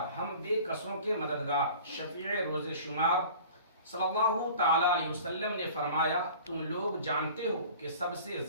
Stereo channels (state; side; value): inverted; both; correlation -0.43